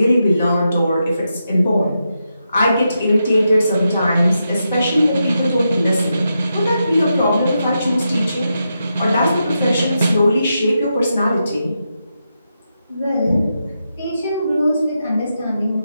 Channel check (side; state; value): both; inverted; correlation -0.85